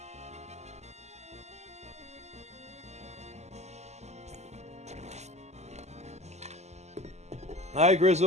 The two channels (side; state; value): left; late; 0.33 ms